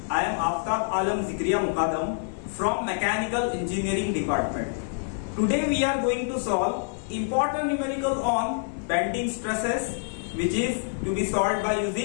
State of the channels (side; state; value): right; silent; 60 dB below the other